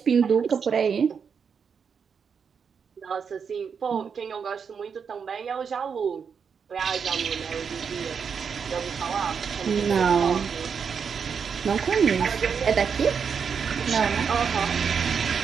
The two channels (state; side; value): quieter; left; 6.4 dB